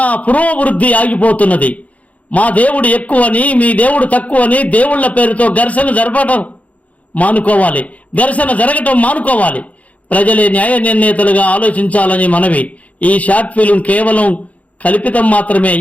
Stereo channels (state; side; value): late; right; 0.068 ms